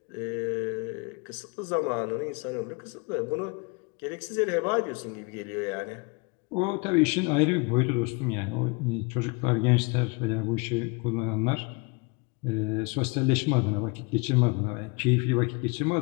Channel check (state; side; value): quieter; right; 29.7 dB